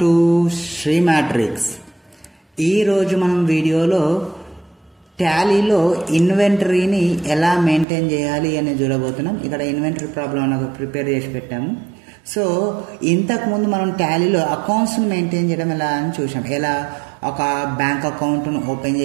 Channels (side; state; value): left; drops out; at 7.9 s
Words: to Sri Matrix. ఈరోజు మనం వీడియోలో టాలీలో ఇన్వెంటరీని ఎలా మెయింటైన్ చేయాలి అని చూడబోతున్నాం. ఇక్కడ ఇన్వెంటరీ ప్రాబ్లం నాకు ప్రిపేర్ చేసి పెట్టాము. సో ఇంతకుముందు మనం టాలీలో అకౌంట్స్ని మెయింటైన్ చేయడం ఎలా అని చూసాం. ఎలా ఒక బ్యాంక్ అకౌంట్ను ఓపెన్